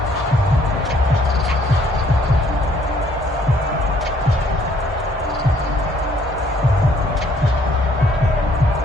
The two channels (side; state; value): both; normal; correlation 0.64